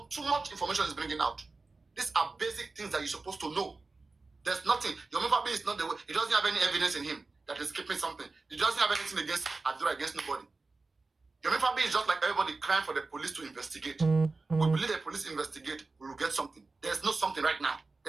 too much information he's bringing out. These are basic things that you're supposed to know. There's nothing. Yomi Fabi is not the way. He doesn't have any evidence in him that is keeping something. He doesn't have anything against Adura, against nobody. Yomi Fabi is just like everybody crying for the police to investigate. We believe the police investigate, we will get something. There's no something right now.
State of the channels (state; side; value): quieter; left; 3.7 dB